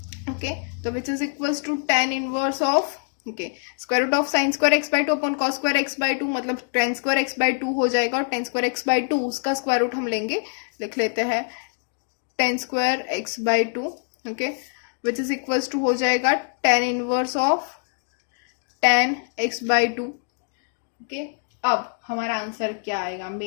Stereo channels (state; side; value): silent; right; digital silence